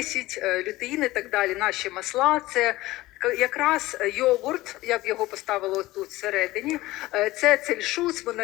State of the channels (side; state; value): right; quieter; 18.1 dB